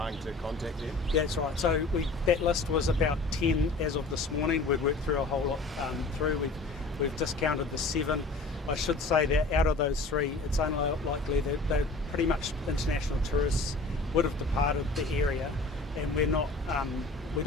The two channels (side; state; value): right; quieter; 3.2 dB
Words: to contact them? That's right. So that list was about 10 as of this morning. We've worked through a whole lot through. We've discounted the 7. I should say that out of those 3, it's unlikely that they're pretty much international tourists would have departed the area, and we're not. We